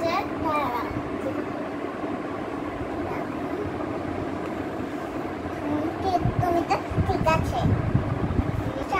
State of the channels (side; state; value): both; identical; correlation 1.00